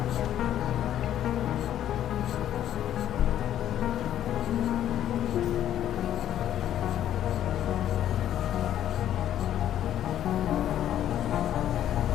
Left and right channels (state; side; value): quieter; right; 11.2 dB